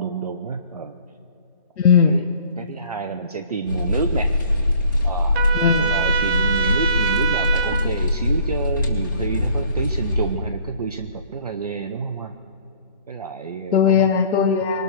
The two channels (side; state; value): both; inverted; correlation -0.51